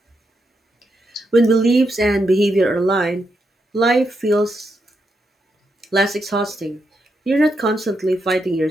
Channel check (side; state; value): both; normal; correlation 0.82